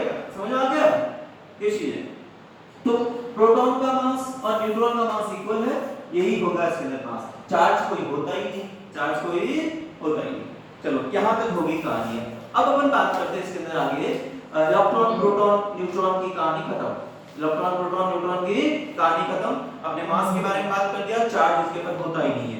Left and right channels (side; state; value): both; identical; correlation 1.00